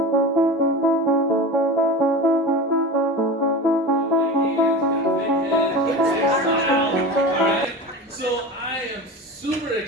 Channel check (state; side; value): normal; both; correlation 0.30